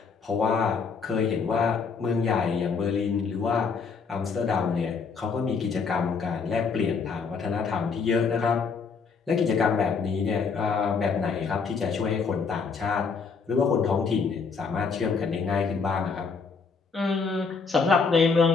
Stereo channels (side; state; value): right; quieter; 5.3 dB